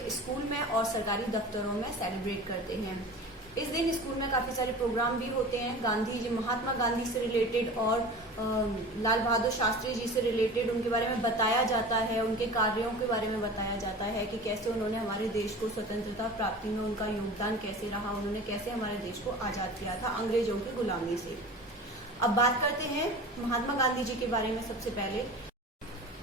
स्कूल में और सरकारी दफ्तरों में सेलिब्रेट करते हैं। इस दिन स्कूल में काफी सारे प्रोग्राम भी होते हैं। गांधी जी, महात्मा गांधी से रिलेटेड और लाल बहादुर शास्त्री जी से रिलेटेड उनके बारे में बताया जाता है, उनके कार्यों के बारे में बताया जाता है कि कैसे उन्होंने हमारे देश को स्वतंत्रता प्राप्ति में उनका योगदान कैसे रहा, उन्होंने कैसे हमारे देश को आजाद किया था अंग्रेजों की गुलामी से। अब बात करते हैं महात्मा गांधी जी के बारे में। सबसे पहले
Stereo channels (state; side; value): normal; both; correlation 0.37